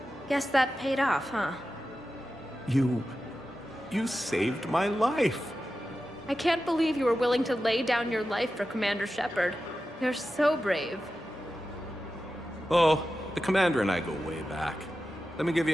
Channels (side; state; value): both; normal; correlation 0.92